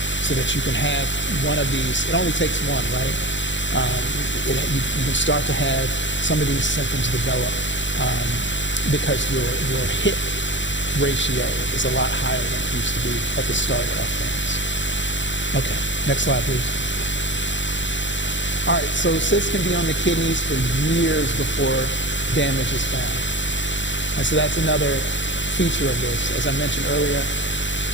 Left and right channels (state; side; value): late; right; 0.54 ms